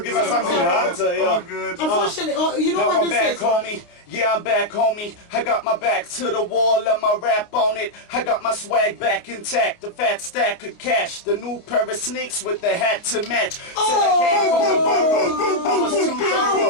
something hard. Oh, good. Unfortunately, you know Now what I'm this back, is? homie. Yeah, I'm back, homie. I got my back to the wall and my rap on it. I got my swag back intact. The fat stack of cash. The new pair of sneaks with the hat to match. Said I came from the bungle. I was too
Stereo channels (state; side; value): late; right; 29 ms